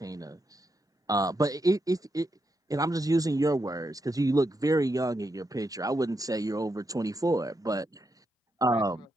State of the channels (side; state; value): both; normal; correlation 0.83